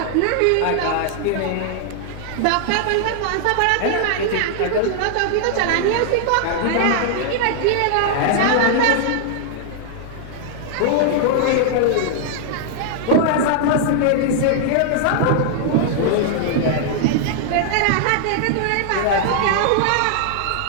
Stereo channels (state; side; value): different; both; correlation -0.01